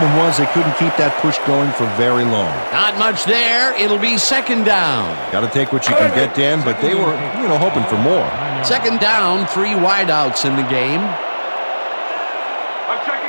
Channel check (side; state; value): both; inverted; correlation -1.00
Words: was they couldn't keep that push going for very long. Not much there. It'll be 2nd down. Got to take what you can get, Dan, but they were, hoping for more. 2nd down, 3 wideouts in the game. I'm